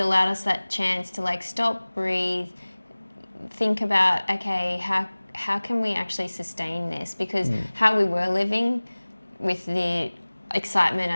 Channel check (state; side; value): inverted; both; correlation -1.00